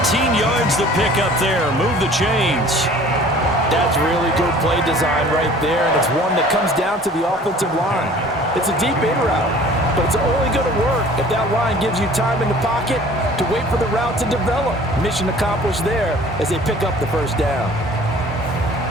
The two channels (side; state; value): both; normal; correlation 0.49